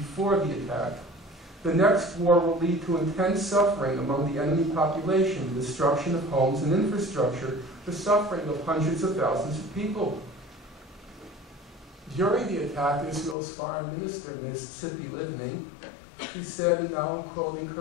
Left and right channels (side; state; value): right; drops out; at 13.4 s